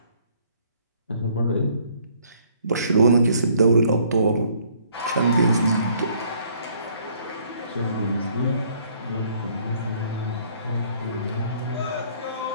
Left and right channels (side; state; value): both; inverted; correlation -0.62